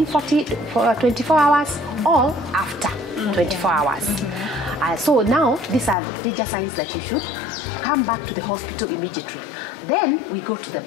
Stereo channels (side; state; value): right; drops out; at 6.0 s